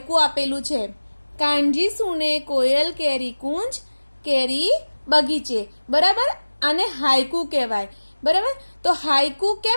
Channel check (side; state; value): both; inverted; correlation -1.00